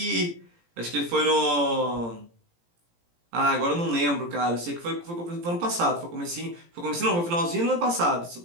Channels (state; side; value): late; left; 17 ms